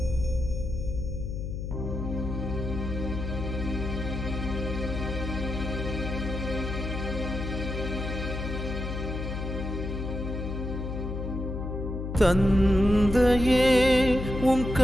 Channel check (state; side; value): noise; left; hum, 5 dB below the sound